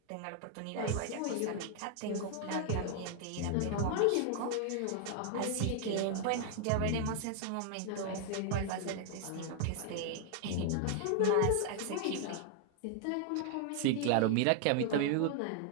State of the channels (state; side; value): different; both; correlation 0.00